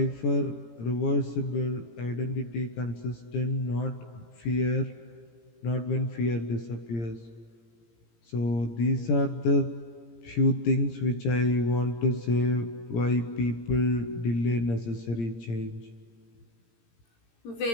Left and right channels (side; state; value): right; late; 17 ms